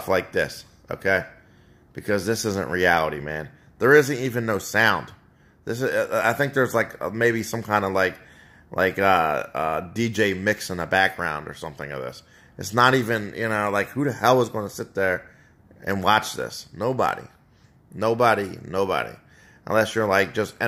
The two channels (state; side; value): identical; both; correlation 1.00